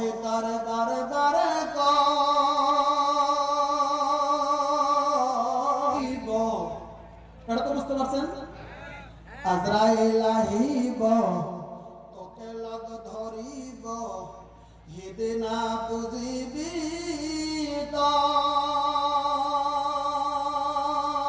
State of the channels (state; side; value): identical; both; correlation 1.00